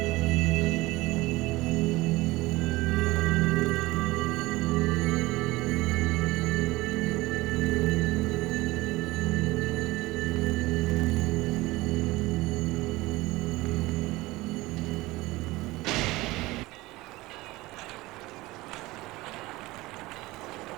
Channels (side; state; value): left; quieter; 19.9 dB